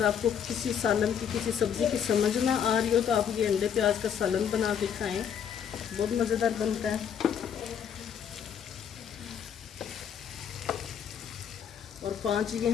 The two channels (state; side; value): quieter; right; 8.2 dB